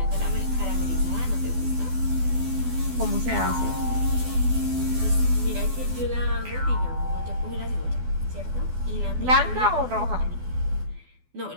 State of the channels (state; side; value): late; left; 12 ms